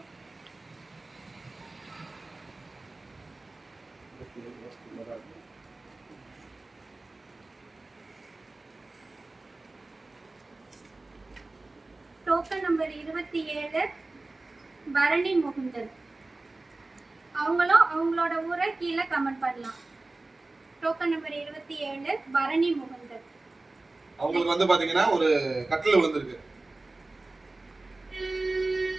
Token number 27 Bharani Mukundan. அவங்களும் அவங்களோட ஊரை கீழே கமெண்ட் பண்ணலாம். Token number 27 Bharani Mukundan. அவங்களுக்கு வந்து பாத்தீங்கன்னா ஒரு கட்டில் விழுந்திருக்கு.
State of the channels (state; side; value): quieter; left; 3.1 dB